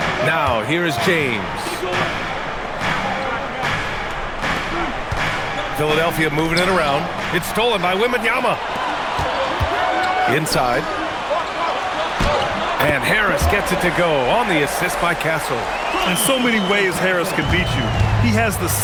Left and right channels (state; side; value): identical; both; correlation 1.00